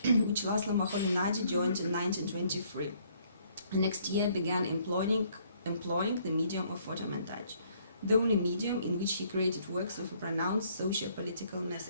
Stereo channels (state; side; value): inverted; both; correlation -0.65